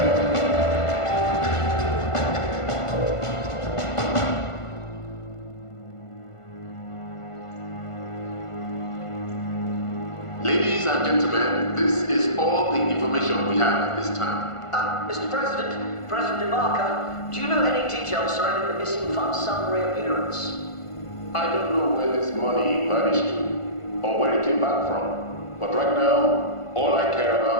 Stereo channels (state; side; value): late; right; 1.5 ms